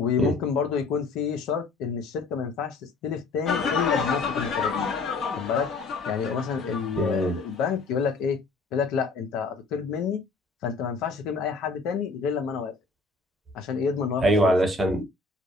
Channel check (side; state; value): right; quieter; 3.7 dB